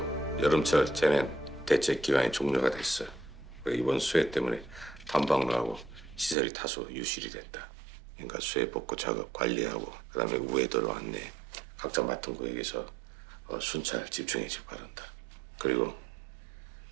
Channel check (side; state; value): left; drops out; at 6.4 s